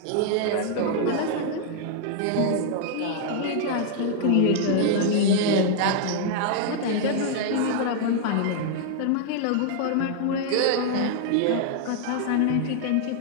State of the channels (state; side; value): different; both; correlation -0.01